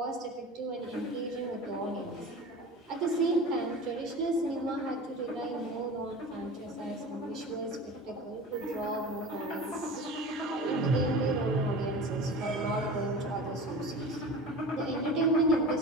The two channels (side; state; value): both; normal; correlation 0.35